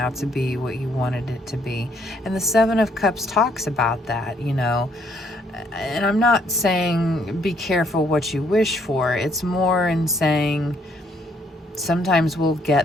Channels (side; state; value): both; normal; correlation 0.69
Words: to be what you wanted it to be. And the Seven of Cups talks about that, you know. And I'm not saying be careful what you wish for. It's more in saying sometimes we'll